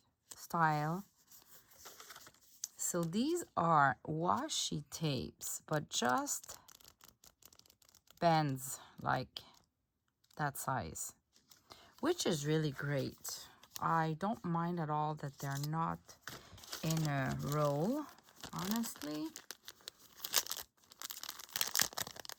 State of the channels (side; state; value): both; identical; correlation 1.00